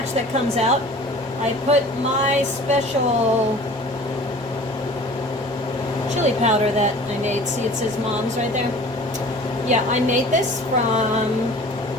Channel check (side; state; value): both; normal; correlation 0.44